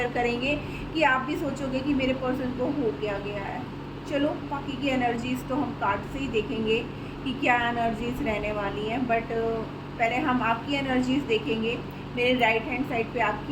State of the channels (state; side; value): identical; both; correlation 1.00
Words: करेंगे कि आप भी सोचोगे कि मेरे पर्सन को हो क्या गया है। चलो बाकी की एनर्जीज़ तो हम कार्ड से ही देखेंगे कि क्या एनर्जीज़ रहने वाली हैं, बट पहले हम आपकी एनर्जीज़ देखेंगे। मेरे राइट हैंड साइड पे